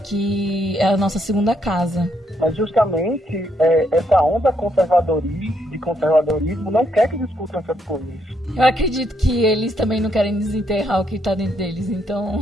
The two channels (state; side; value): normal; both; correlation 0.75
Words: é a nossa segunda casa. Mas justamente essa onda de conservadorismo não quer que discutam essas coisas. Eu acredito que eles também não querem desenterrar o que está dentro deles.